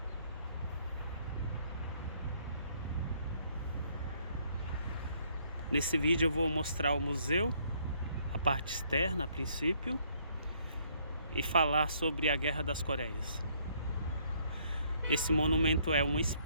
Nesse vídeo eu vou mostrar o museu, a parte externa a princípio, e falar sobre a Guerra das Coreias. Esse monumento é uma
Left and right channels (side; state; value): both; inverted; correlation -0.66